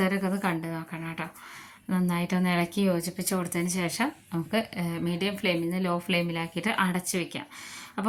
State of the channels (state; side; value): identical; both; correlation 1.00